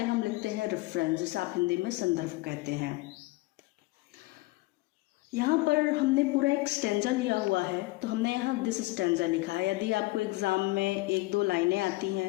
हम लिखते हैं रेफरेंस, जिसे आप हिंदी में संदर्भ कहते हैं। यहाँ पर हमने पूरा एक स्टैंजा लिया हुआ है, तो हमने यहाँ दिस स्टैंजा लिखा है। यदि आपको एग्ज़ाम में 1-2 लाइनें आती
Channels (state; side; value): quieter; right; 21.4 dB